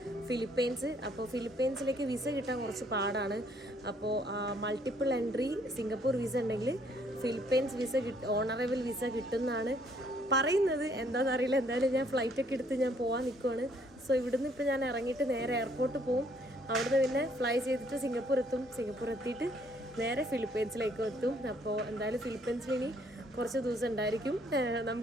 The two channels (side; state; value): both; normal; correlation 0.65